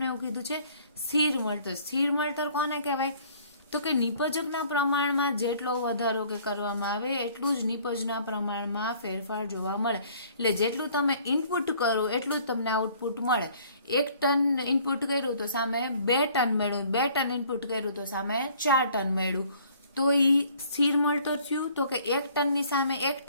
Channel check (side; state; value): both; inverted; correlation -0.57